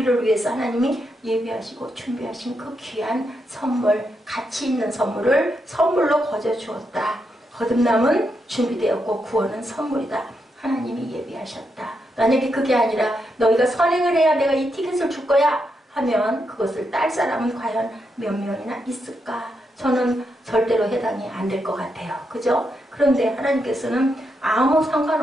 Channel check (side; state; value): both; normal; correlation 0.82